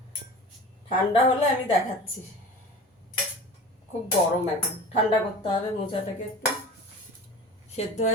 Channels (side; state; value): both; normal; correlation 0.36